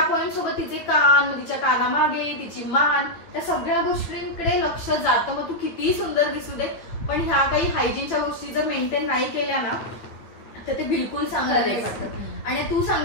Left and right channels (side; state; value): right; late; 9.2 ms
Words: पॉईंट सोबत तिचे कान, तिच्या कानामागे तिची मान, त्या सगळ्या गोष्टींकडे लक्ष जातं. मग तू कितीही सुंदर दिसू दे, पण ह्या काही हायजीनच्या गोष्टी जर मेंटेन नाही केल्या ना तर ते बिलकुल चांगलं नाही वाटत. आणि तू